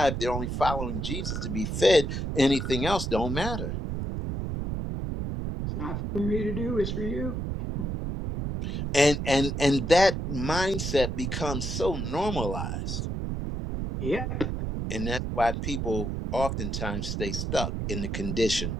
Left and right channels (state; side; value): noise; right; rumble, 3 dB below the sound